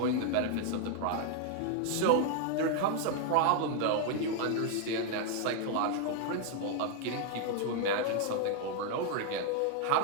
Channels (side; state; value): both; different; correlation 0.00